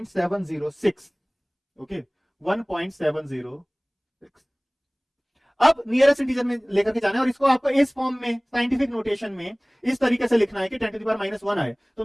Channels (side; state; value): both; identical; correlation 1.00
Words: ओके, 1.706। अब नियरेस्ट इंटीजर में लेकर के जाना है, और इसको आपको इस फॉर्म में, साइंटिफिक नोटेशन में इस तरीके से लिखना है कि 10 to the power -1 आए। तो